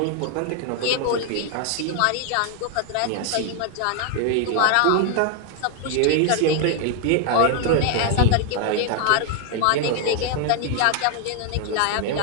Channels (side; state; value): both; different; correlation 0.00